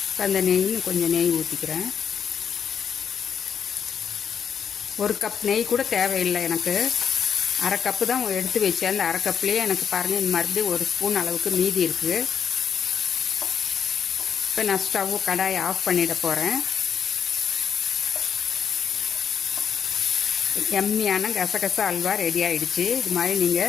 இப்போ அந்த நெய்ன்னு கொஞ்சம் நெய் ஊற்றிக்கிறேன். 1 கப் நெய் கூட தேவையில்லை எனக்கு. 1/2 கப்பு தான் எடுத்து வச்சேன். அந்த 1/2 கப்லேயே எனக்கு பாருங்கள் இந்த மறுபடியும் 1 ஸ்பூன் அளவுக்கு மீதி இருக்குது. இப்போ நான் ஸ்டவ் கடாயை ஆஃப் பண்ணிட போகிறேன். எம்மியான கசகசா அல்வா ரெடி ஆகிடுச்சு. இது மாதிரி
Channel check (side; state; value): right; quieter; 7.6 dB